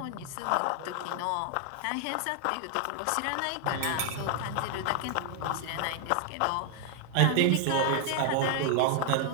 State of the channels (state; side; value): different; both; correlation 0.00